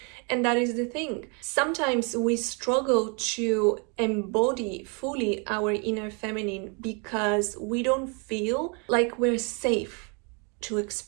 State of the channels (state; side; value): quieter; left; 35.1 dB